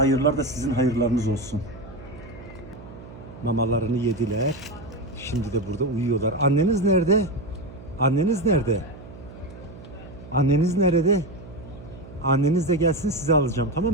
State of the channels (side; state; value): right; noise; hum, 17 dB below the sound